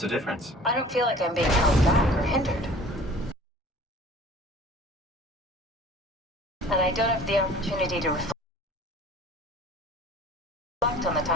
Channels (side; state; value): both; normal; correlation 0.47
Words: the difference? I don't feel like I'm being held back or hindered. And I don't have the opportunity to reflect on the